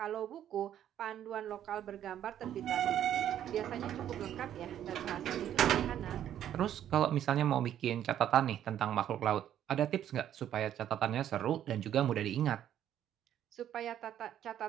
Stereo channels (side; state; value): left; quieter; 10.8 dB